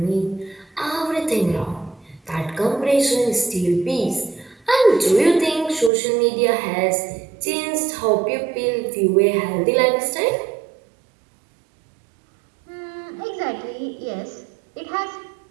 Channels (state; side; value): drops out; left; at 5.9 s